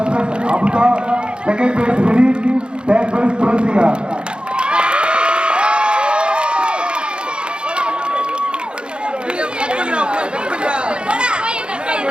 place Abutha, second prize Vineeth, third prize Thulasika.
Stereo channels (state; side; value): late; left; 0.054 ms